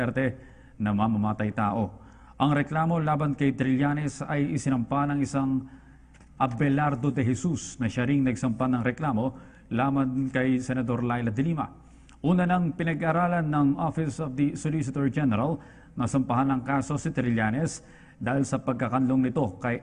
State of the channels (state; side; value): identical; both; correlation 1.00